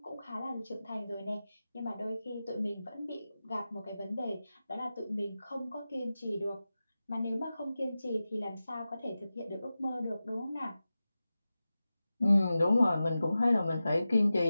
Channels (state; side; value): inverted; both; correlation -0.94